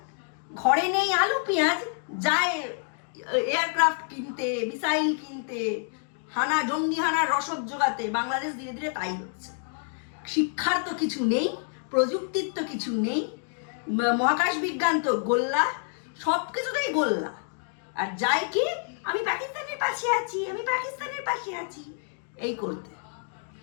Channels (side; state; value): right; silent; 59 dB below the other